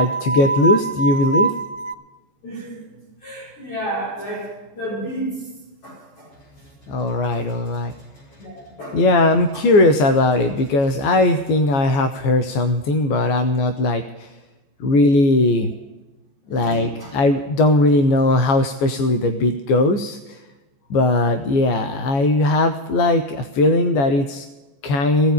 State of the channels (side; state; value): right; late; 14 ms